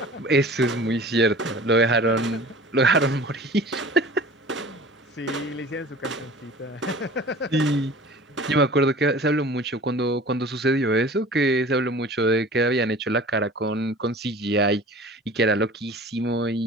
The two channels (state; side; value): normal; both; correlation 0.43